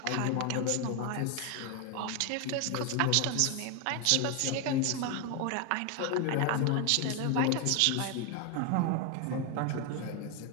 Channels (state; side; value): different; both; correlation 0.01